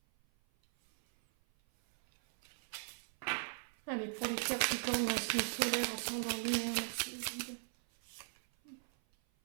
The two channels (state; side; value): silent; left; 52 dB below the other